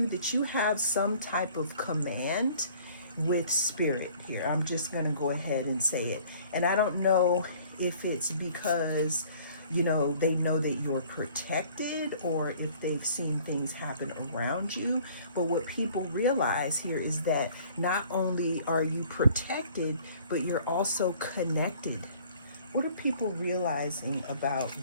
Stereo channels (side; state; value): both; inverted; correlation -0.54